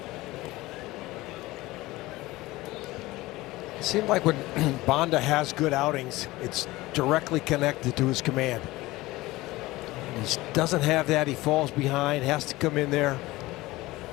It seemed like when Bonda has good outings, it's directly connected to his command. He doesn't have that. He falls behind, has to come in there.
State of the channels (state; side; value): quieter; right; 19.3 dB